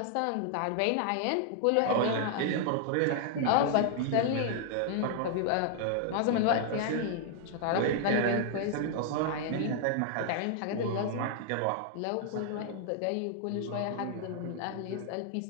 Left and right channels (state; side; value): different; both; correlation -0.01